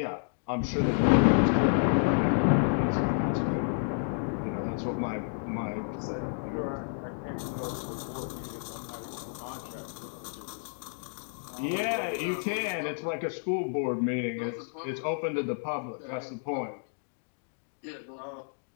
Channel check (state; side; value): silent; right; digital silence